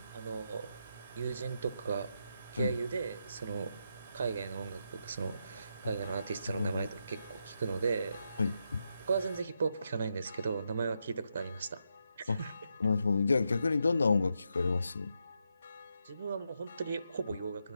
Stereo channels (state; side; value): inverted; both; correlation -0.83